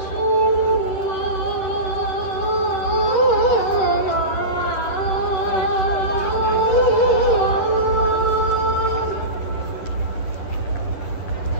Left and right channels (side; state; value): right; late; 10 ms